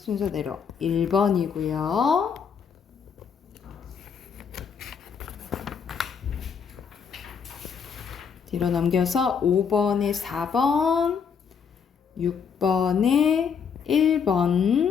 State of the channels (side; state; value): right; quieter; 6.6 dB